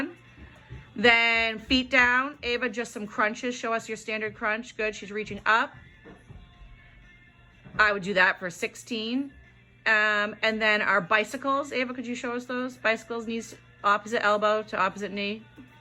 Then feet down. Ava, just some crunches. Show us your standard crunch. Good, she's reaching up. I would do that for 16. And then our bicycles. Ava, could you show us those? Bicycles, knees opposite elbow to opposite knee.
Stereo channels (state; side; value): identical; both; correlation 1.00